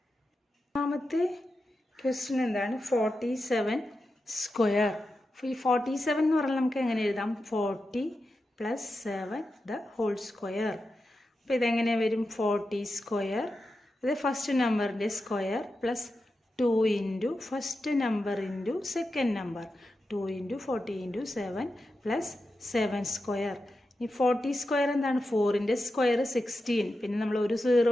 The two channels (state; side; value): normal; both; correlation 0.90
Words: രണ്ടാമത്തെ ക്വസ്റ്റ്യൻ എന്താണ്, 47 സ്ക്വയർ. ഈ 47 എന്ന് പറഞ്ഞാൽ നമുക്ക് എങ്ങനെ എഴുതാം, 40 + 7 ദ ഹോൾ സ്ക്വയർ. അപ്പോൾ ഇതെങ്ങനെ വരും, 40 സ്ക്വയർ, അത് ഫസ്റ്റ് നമ്പറിൻ്റെ square plus 2 into first number into second number 2 into 40 into 7 plus 7 square. ഈ 40 സ്ക്വയർ എന്താണ്, 4ൻ്റെ സ്ക്വയർ 16, പിന്നെ നമ്മൾ 1